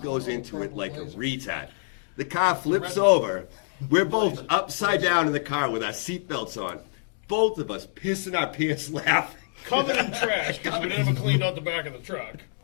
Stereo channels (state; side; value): silent; right; digital silence